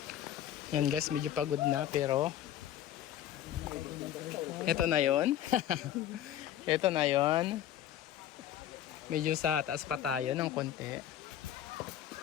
Yan guys, medyo pagod na pero ito na yon. Ito na yon. Medyo sa taas pa tayo ng konti.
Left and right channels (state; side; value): quieter; right; 11.3 dB